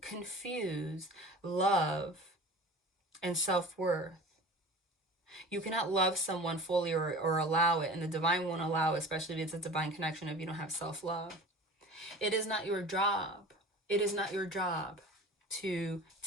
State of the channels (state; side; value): normal; both; correlation 0.38